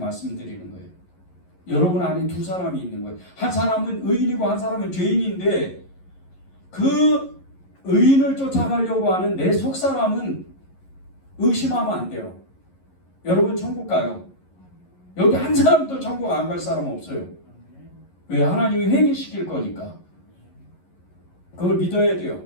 거예요. 여러분 안에 두 사람이 있는 거예요. 한 사람은 의인이고 한 사람은 죄인인데 그 의인을 쫓아가려고 하는 내 속사람은 의심하면 안 돼요. 여러분 천국 가요. 여기 한 사람도 천국 안 갈 사람 없어요. 왜? 하나님이 회개시킬 거니까. 그걸 믿어야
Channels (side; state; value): right; late; 11 ms